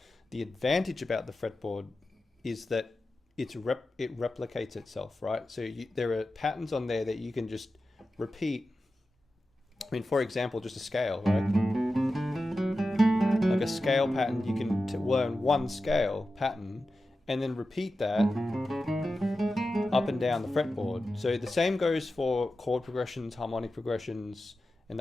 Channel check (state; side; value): normal; both; correlation 0.92